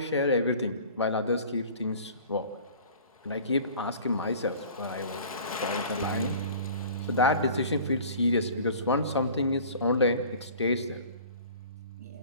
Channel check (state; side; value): inverted; both; correlation -0.45